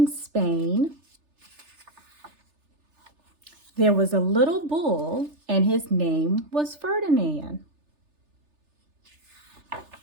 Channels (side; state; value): left; late; 3.3 ms